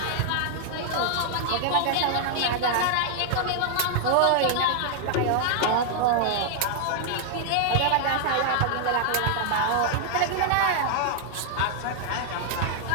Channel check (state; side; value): different; both; correlation 0.00